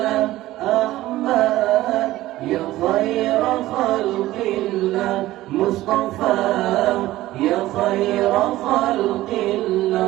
أحمد، يا خير خلق الله مصطفى، يا خير خلق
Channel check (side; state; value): left; quieter; 16.1 dB